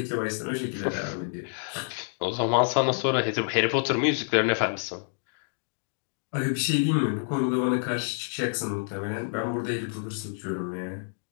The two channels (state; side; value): silent; right; digital silence